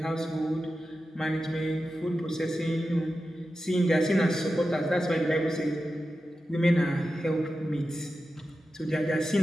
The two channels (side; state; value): both; normal; correlation 0.92